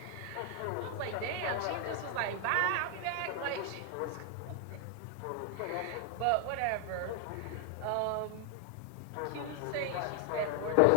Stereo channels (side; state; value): both; different; correlation 0.00